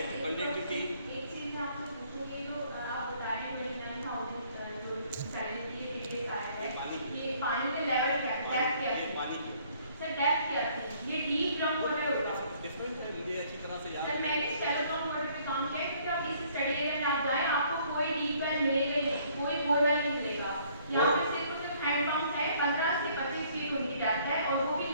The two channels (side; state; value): both; inverted; correlation -0.61